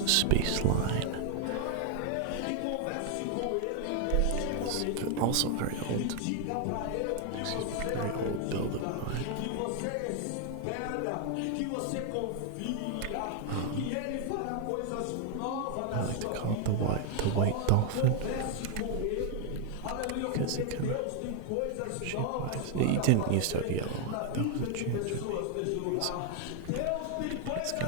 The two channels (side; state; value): both; different; correlation 0.00